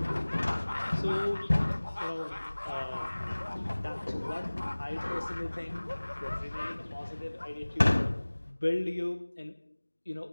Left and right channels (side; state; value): both; inverted; correlation -1.00